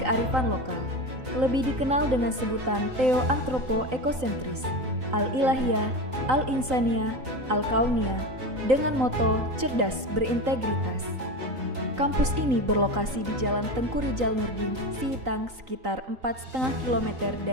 kearifan lokal. Lebih dikenal dengan sebutan Theo-Antropo-Ekosentris, Al-Ilahiyah, Al-Insaniyah, Al-Kauniyah, dengan moto cerdas berintegritas. Kampus ini berlokasi di Jalan Tengku Rijal Nurdin, Sihitang, sekitar 4,5 km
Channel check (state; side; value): late; left; 3.9 ms